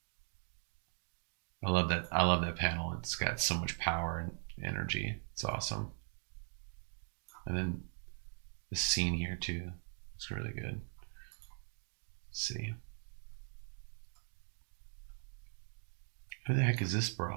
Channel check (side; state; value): left; silent; 51 dB below the other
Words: I love that. I love that panel. It's got so much power and energy. It's awesome. And then the scene here too. It's really good. Let's see. Who the heck is this